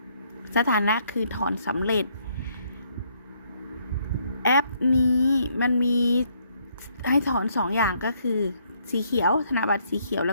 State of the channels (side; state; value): both; inverted; correlation -0.70